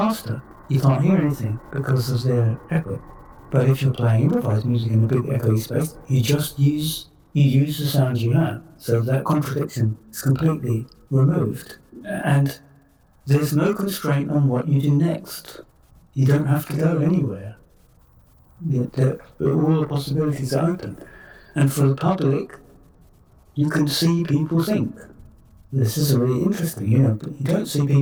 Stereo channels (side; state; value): both; identical; correlation 1.00